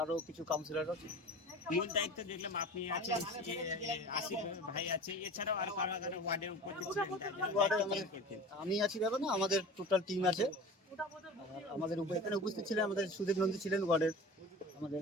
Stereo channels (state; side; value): normal; both; correlation 0.36